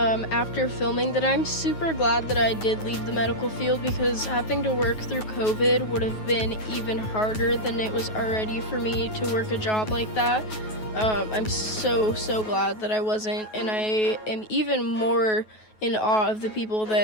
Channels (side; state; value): right; late; 9.3 ms